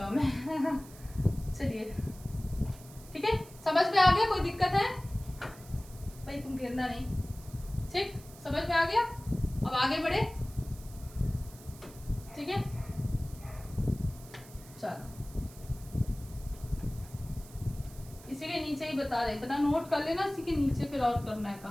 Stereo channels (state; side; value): noise; right; hiss, 20 dB below the sound